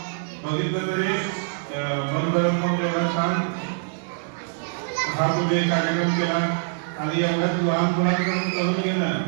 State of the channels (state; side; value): silent; left; digital silence